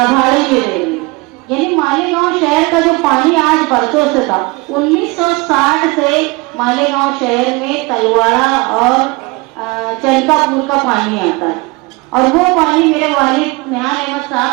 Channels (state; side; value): quieter; left; 25.3 dB